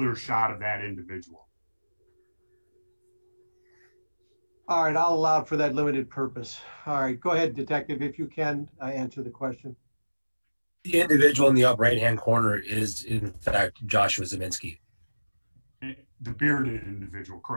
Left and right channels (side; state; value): both; inverted; correlation -1.00